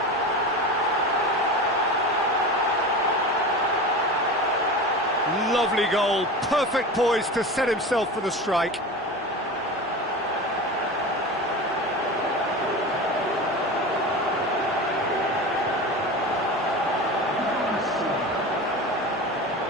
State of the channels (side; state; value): both; normal; correlation 0.29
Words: Lovely goal. Perfect poise to set himself for the strike.